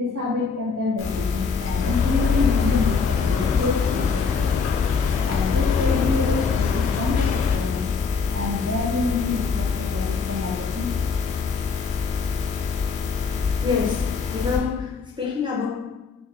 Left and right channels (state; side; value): quieter; right; 5.1 dB